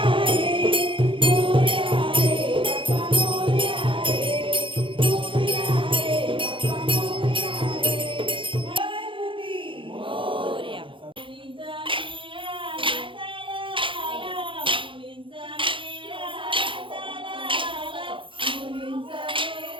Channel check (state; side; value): late; left; 0.25 ms